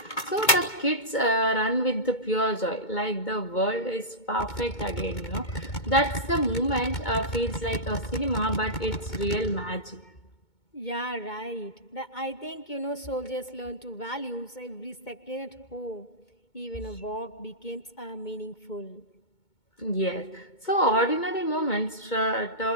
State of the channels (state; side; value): late; right; 2.2 ms